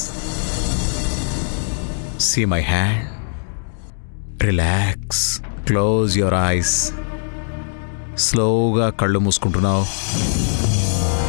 See my hand. Relax. Close your eyes. స్లోగా కళ్ళు మూసుకుంటున్నావు.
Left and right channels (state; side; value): silent; right; digital silence